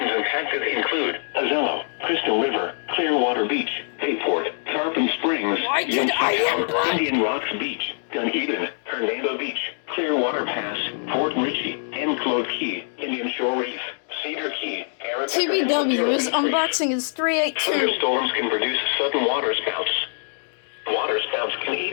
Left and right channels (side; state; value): right; silent; 63 dB below the other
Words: impacted include Azello, Crystal River, Clearwater Beach, Bayport, Tarpon Springs, Indian Rocks Beach, Dunedin, Hernando Beach, Clearwater Pass, Fort Ritchie, Enclosed Key, Indian Shore Reef, Cedar Key, TBW's unboxing is 382. Thunderstorms can produce sudden waterspouts. Waterspouts can